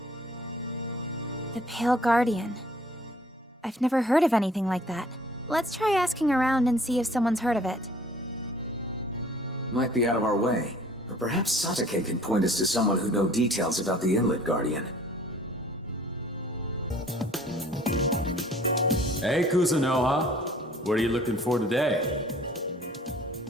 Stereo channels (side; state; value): both; normal; correlation 0.54